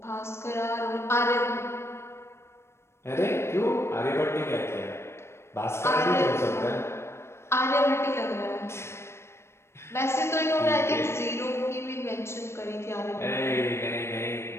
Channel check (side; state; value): right; late; 0.13 ms